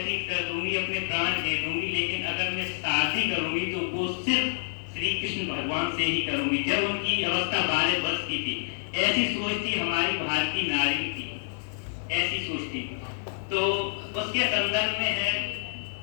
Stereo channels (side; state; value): right; silent; digital silence